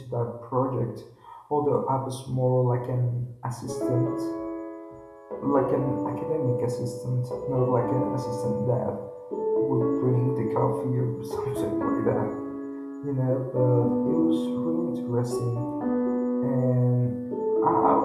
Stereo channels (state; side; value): identical; both; correlation 1.00